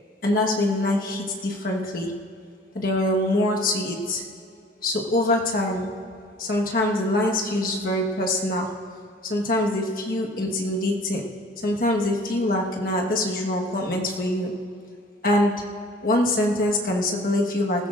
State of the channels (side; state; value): both; normal; correlation 0.49